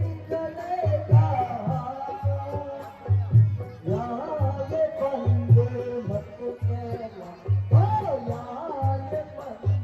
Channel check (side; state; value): both; identical; correlation 1.00